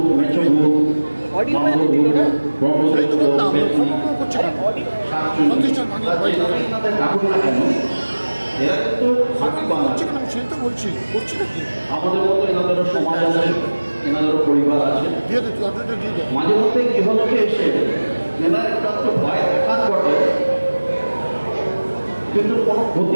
মেচো ভূত, আমাদের মতো এনাদেরও সমাজ আছে, এনাদেরও পরিবার আছে। মাঝে মধ্যে গৃহলোকে এসে এনার একটু ভয় দেখার বটে, কিন্তু কোনো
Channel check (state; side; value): inverted; both; correlation -1.00